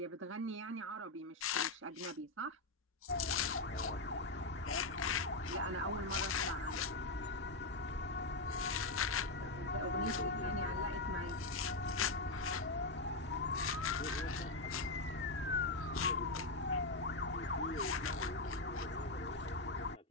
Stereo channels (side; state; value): right; quieter; 3.1 dB